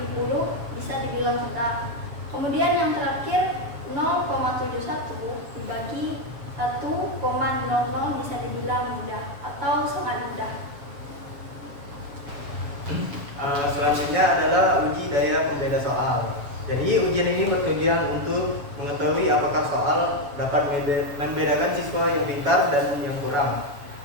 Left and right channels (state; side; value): late; left; 7.1 ms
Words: bisa dibilang sedang. Kemudian yang terakhir 0,71 dibagi 1,00 bisa dibilang mudah atau sangat mudah. Selanjutnya adalah uji daya pembeda soal. Jadi ujian ini bertujuan untuk mengetahui apakah soal dapat membedakan siswa yang pintar dan yang kurang.